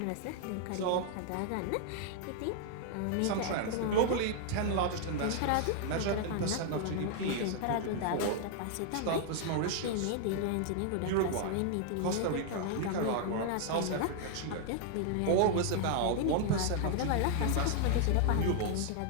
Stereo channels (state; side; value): different; both; correlation 0.00